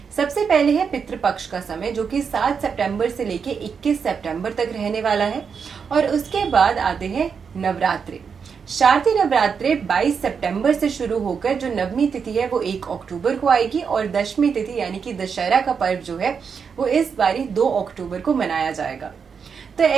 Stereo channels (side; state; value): left; quieter; 6.2 dB